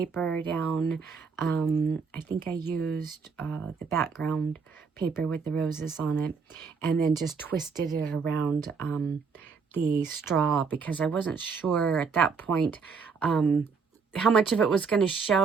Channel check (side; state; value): left; quieter; 5.3 dB